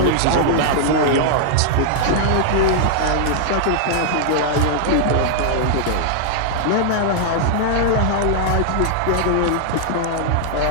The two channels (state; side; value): different; both; correlation -0.01